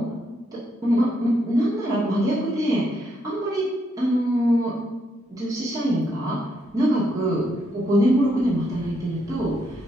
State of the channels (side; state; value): both; normal; correlation 0.77